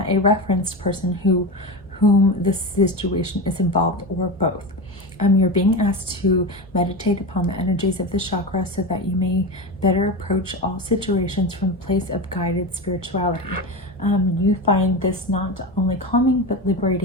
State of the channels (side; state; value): both; normal; correlation 0.21